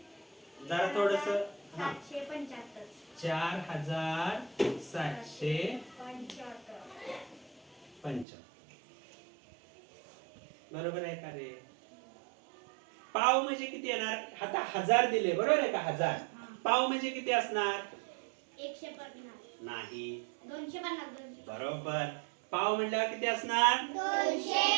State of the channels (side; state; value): left; drops out; at 8.2 s